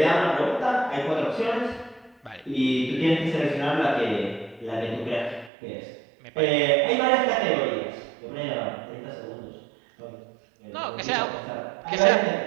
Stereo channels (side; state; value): left; drops out; at 5.5 s